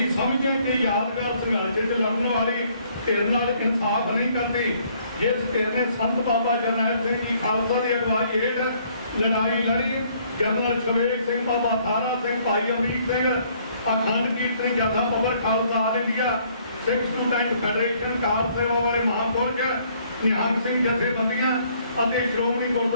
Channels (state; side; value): inverted; both; correlation -0.64